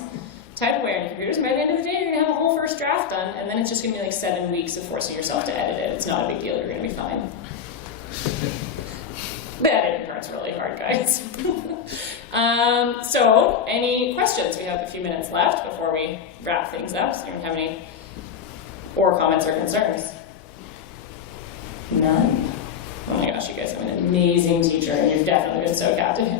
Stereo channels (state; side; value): quieter; right; 7.3 dB